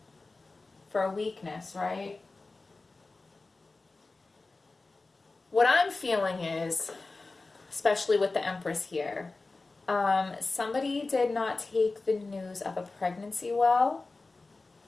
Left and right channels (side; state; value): right; quieter; 3.5 dB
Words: for a weakness, right? What I'm feeling is, especially with the Empress here, somebody did not take the news of a pregnancy well.